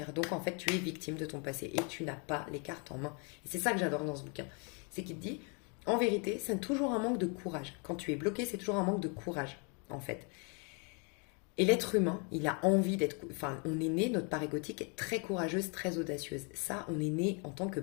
Donc, en fait, tu es victime de ton passé et tu n'as pas les cartes en main. Et c'est ça que j'adore dans ce bouquin. C'est qu'il te dit, En vérité, c'est toujours un manque de courage. Quand tu es bloqué, c'est toujours un manque de courage, en fait. Et l'être humain, il a envie d'être... Enfin, on est né, notre part égotique est très courageuse, très audacieuse. Ça, on est né en tant que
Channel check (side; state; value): right; quieter; 35.4 dB